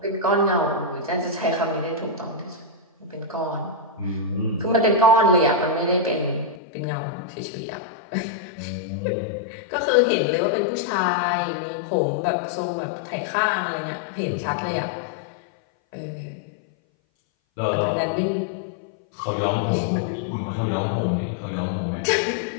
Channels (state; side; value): drops out; right; at 6.6 s